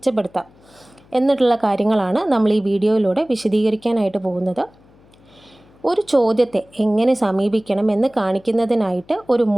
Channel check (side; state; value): left; noise; hum, 28 dB below the sound